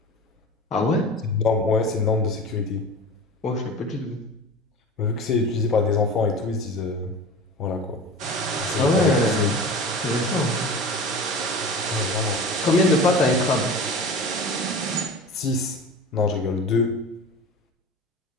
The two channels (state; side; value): normal; both; correlation 0.34